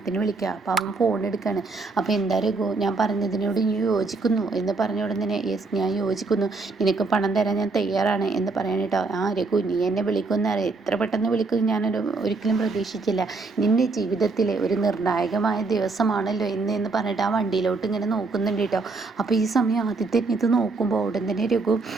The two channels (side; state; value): left; quieter; 3.8 dB